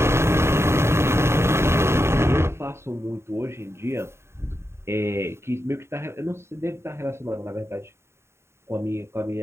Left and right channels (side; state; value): left; late; 0.13 ms